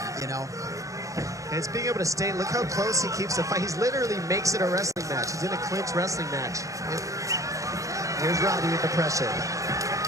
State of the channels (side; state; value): left; late; 0.16 ms